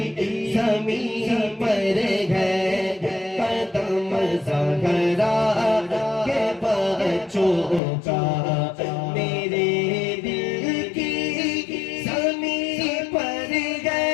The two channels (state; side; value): drops out; right; at 7.8 s